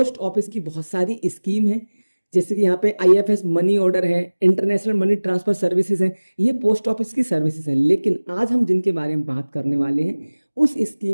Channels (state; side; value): inverted; both; correlation -1.00